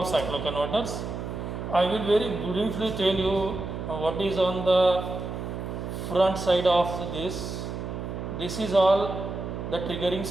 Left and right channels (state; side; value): noise; right; hum, 6 dB below the sound